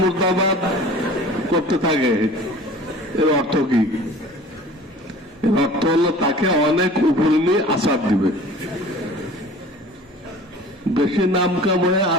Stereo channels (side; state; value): both; normal; correlation 0.44